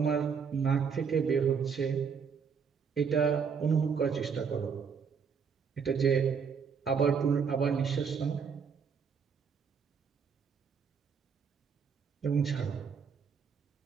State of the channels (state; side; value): quieter; left; 6.3 dB